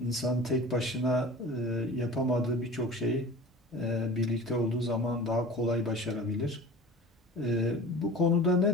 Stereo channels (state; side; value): normal; both; correlation 0.39